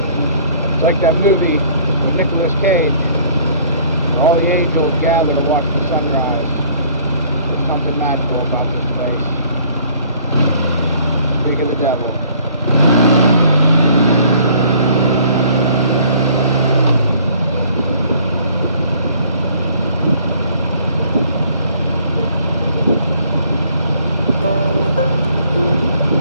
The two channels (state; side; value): inverted; both; correlation -0.57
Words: It's like that movie with Nicolas Cage. All the angels gather to watch the sunrise. There's something magical about this place. Speak of the devil.